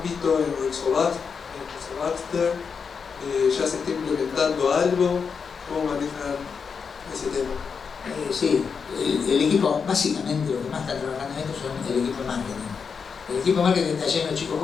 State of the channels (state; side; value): quieter; right; 5.9 dB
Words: en Rizobacter? ¿Ya se está implementando algo? ¿Cómo manejan ese tema? Sí, el equipo, básicamente lo que más está trabajando en esto son el equipo de marketing. El equipo de marketing está lleno de chicos